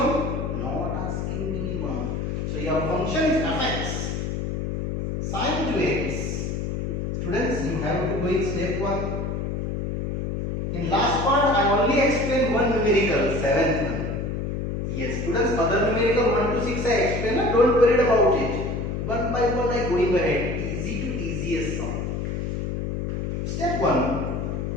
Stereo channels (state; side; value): noise; left; hum, 2 dB below the sound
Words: not asking minimum. So your function is fx sine 2x. Students, you have to go in step 1. In last part, I only explained one numerical, 7th one. Yes, students, other numerical 1 to 6 I explained, don't worry about it. One by one I going ahead, easy to easiest sum. Step 1,